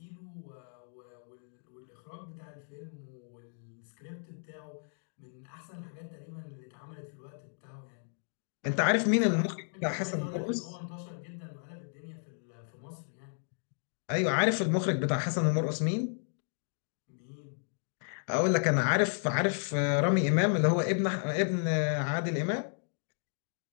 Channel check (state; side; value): silent; right; digital silence